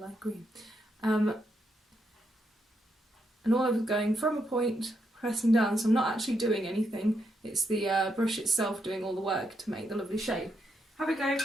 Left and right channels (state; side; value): normal; both; correlation 0.80